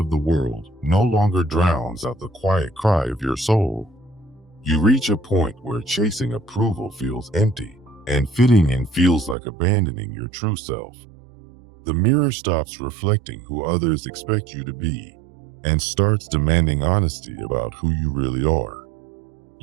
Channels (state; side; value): drops out; left; at 9.3 s